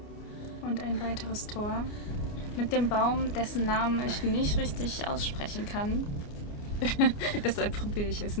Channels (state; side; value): late; right; 29 ms